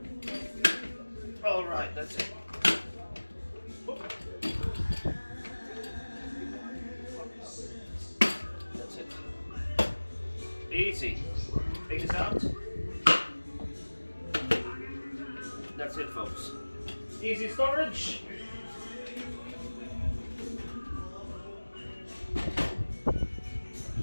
All right, that's it. That's it. Easy. Take this out. That's it, folks. Easy storage.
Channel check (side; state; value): both; inverted; correlation -1.00